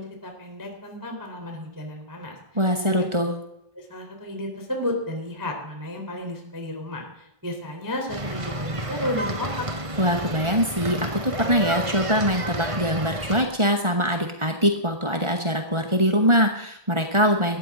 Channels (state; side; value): late; left; 1.4 ms